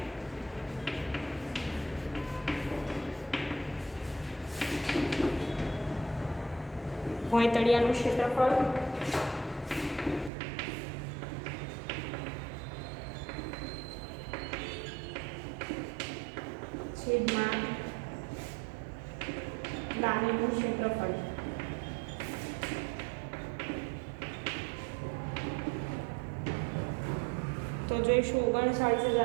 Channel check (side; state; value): left; drops out; at 10.3 s